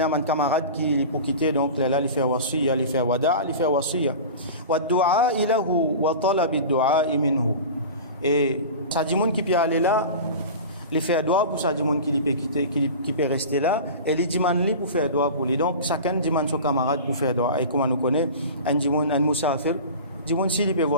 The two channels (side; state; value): both; inverted; correlation -0.33